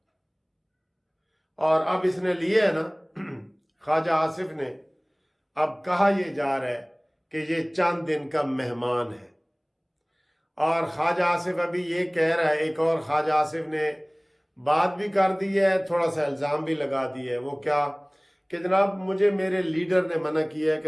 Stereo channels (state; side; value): identical; both; correlation 1.00